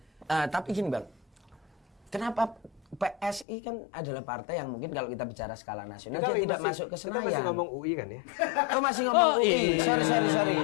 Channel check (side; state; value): right; drops out; at 3.5 s